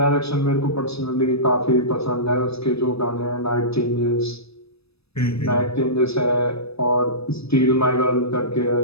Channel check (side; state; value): right; late; 0.78 ms